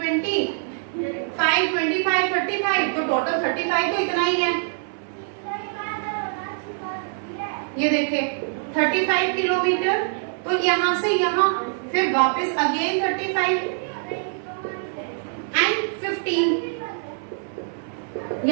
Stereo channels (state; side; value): silent; left; 58 dB below the other